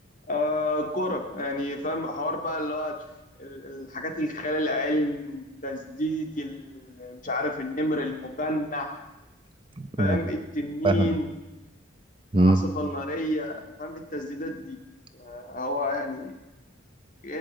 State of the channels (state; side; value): normal; both; correlation 0.47